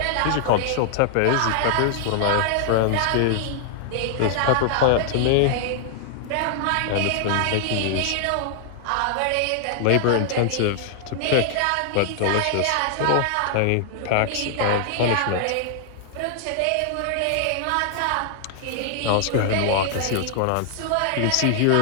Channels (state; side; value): different; both; correlation -0.01